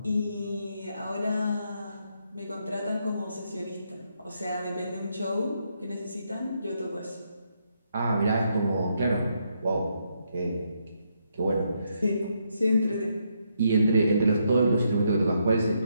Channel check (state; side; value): inverted; both; correlation -0.77